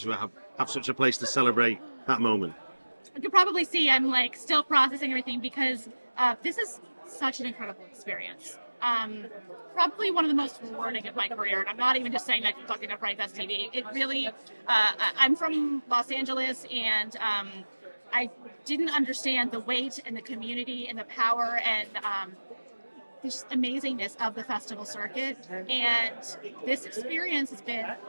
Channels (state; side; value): inverted; both; correlation -1.00